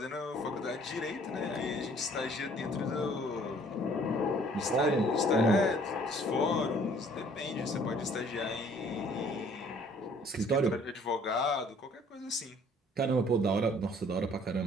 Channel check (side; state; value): both; normal; correlation 0.57